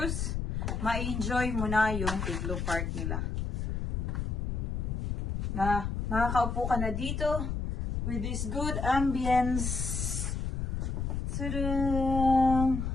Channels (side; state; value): left; noise; rumble, 1 dB below the sound